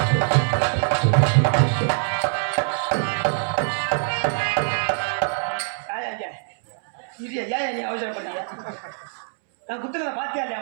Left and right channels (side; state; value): left; silent; 63 dB below the other